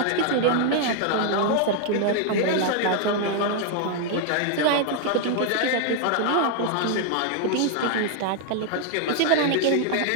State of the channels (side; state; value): both; different; correlation 0.00